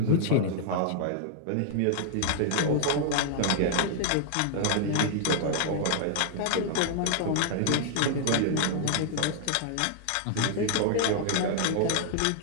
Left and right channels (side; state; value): both; different; correlation -0.01